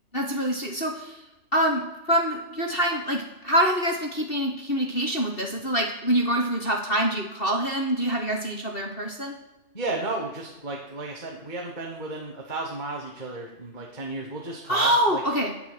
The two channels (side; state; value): right; late; 2.7 ms